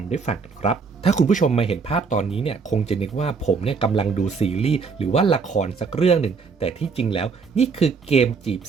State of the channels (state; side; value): quieter; left; 5.1 dB